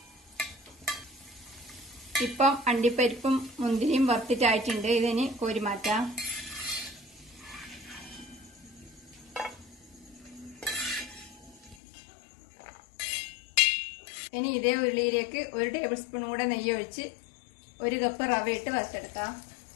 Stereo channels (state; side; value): drops out; right; at 11.8 s